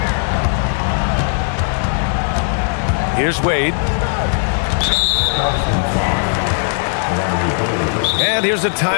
Here's Wade. And here's a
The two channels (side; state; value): right; silent; 60 dB below the other